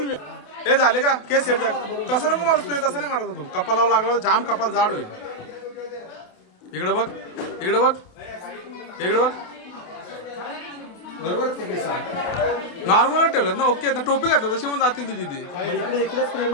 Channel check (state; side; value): late; right; 28 ms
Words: मिया हे झाले का केस सेट झाले. तसं नको मारूस तू. तसं नाही मारत तू. कपालावर लागला जाम कपाल जाड होईल. इकडे बघ इकडे बघ इकडे बघ. नॉर्मल ठेवलं ना. ओके ना. टोपी घातलं तशी म्हणून जातील तुझी ती.